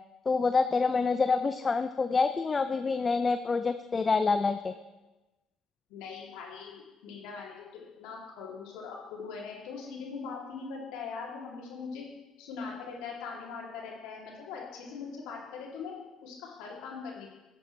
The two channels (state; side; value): quieter; right; 4.1 dB